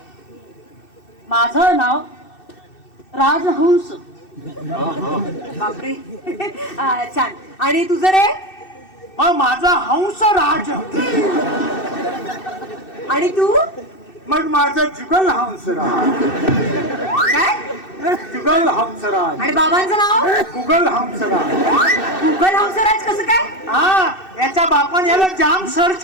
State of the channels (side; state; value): right; late; 2.6 ms